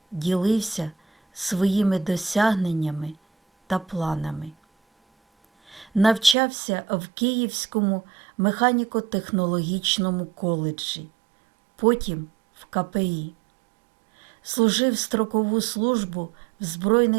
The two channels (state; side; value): drops out; left; at 6.4 s